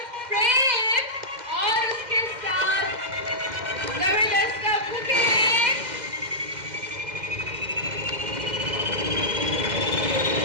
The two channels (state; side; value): late; left; 2.1 ms